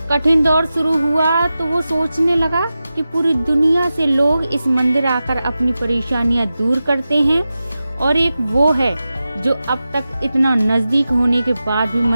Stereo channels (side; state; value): both; inverted; correlation -0.93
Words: कठिन दौर शुरू हुआ तो वो सोचने लगा कि पूरी दुनिया से लोग इस मंदिर आकर अपनी परेशानियां दूर करते हैं और एक वो है जो अब तक इतना नजदीक होने के बाद भी